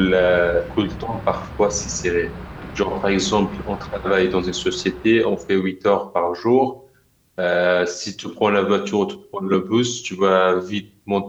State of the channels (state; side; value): identical; both; correlation 1.00